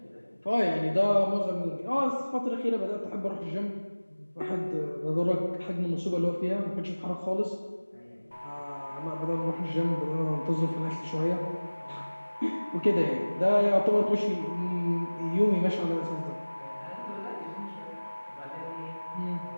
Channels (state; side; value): inverted; both; correlation -1.00